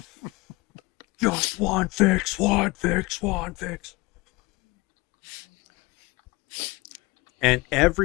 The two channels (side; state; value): right; quieter; 23.4 dB